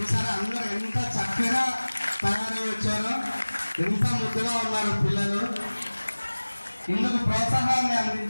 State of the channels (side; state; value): both; inverted; correlation -1.00